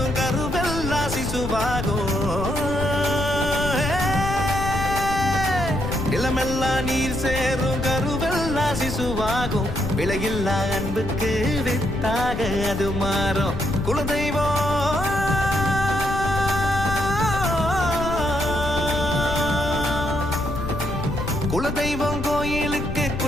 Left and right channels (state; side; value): noise; left; rumble, 6 dB below the sound